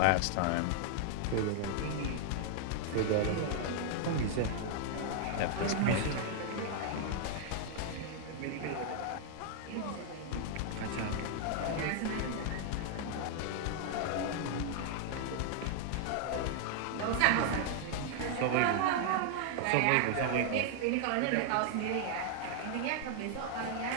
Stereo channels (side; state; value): both; different; correlation 0.00